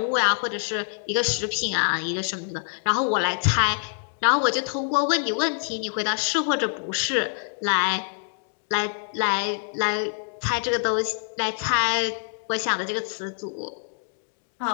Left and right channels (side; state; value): right; silent; digital silence